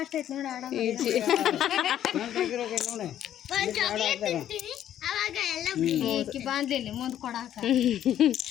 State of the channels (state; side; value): quieter; right; 11.0 dB